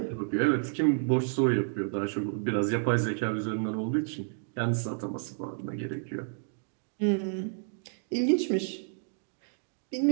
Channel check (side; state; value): left; silent; digital silence